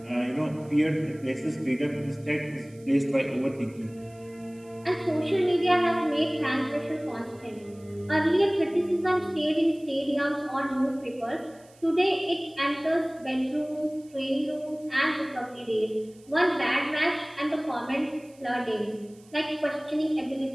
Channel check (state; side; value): noise; right; hiss, 28 dB below the sound